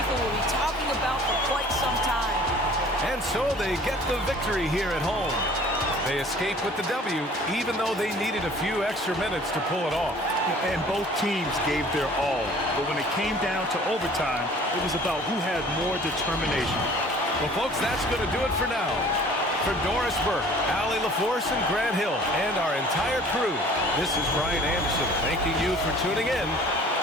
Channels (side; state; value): both; normal; correlation 0.50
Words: will be talking about for quite some time. And so they get the victory here at home. They escape with the W, even though they needed a few extra minutes to pull it off. And both teams gave their all. But when it came down to overtime, it was about who had more determination. Well, folks, that's going to do it for now. For Doris Burke, Allie LaForce, and Grant Hill, and our entire crew, this is Brian Anderson thanking you for tuning in.